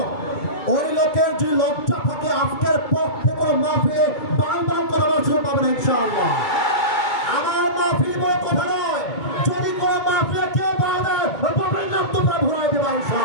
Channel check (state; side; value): late; right; 2.3 ms